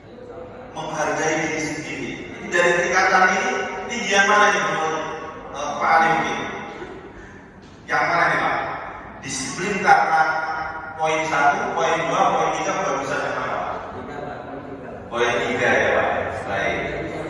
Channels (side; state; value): both; identical; correlation 1.00